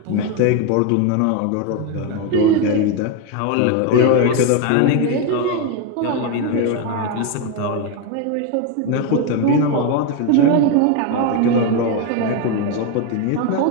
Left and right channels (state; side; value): different; both; correlation 0.02